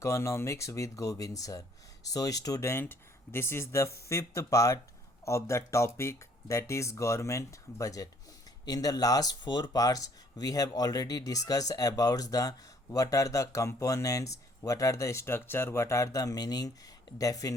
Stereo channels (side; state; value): both; normal; correlation 0.62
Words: with Govind sir. So student, this is the fifth part of the topic, that is government budget. In the last four parts we have already discussed about the what are the components, what are the structure, what are the meaning,